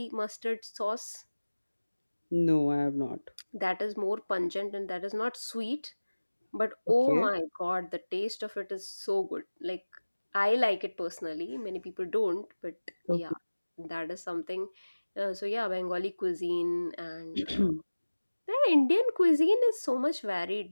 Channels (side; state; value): both; inverted; correlation -1.00